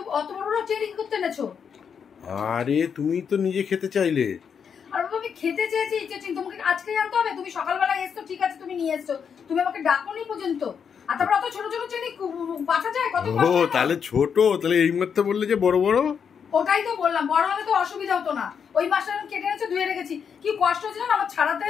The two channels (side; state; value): right; quieter; 7.0 dB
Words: অত বড় বড় চিংড়ি কি করতে এনেছো? আরে তুমি তো নিজে খেতে চাইলে। আর বাবা আমি খেতে চেয়েছি চিংড়ি, তোমাকে আজকেই আনতে হবে? তুমি সকালবেলা এসছো ঠিক আছে, তুমি নিয়ে এসছো, তুমি আমাকে ডাকোনি পর্যন্ত। আর তারপর অত ছোট ছোট চিংড়ি বাঁচা যায়? কত ও তাহলে ছোট, তাহলে এই মাত্র বললে যে বড় বড়। ওটাই তো বললাম, বড় হলে তো অসুবিধা হতো না। ওই মাছটা আমি কেটে এনেছো, ধুয়ে রেখেছি, কি কষ্ট হচ্ছে না আমার ছাড়াতে।